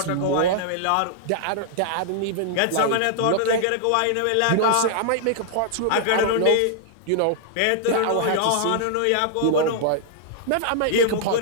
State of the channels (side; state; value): both; different; correlation -0.01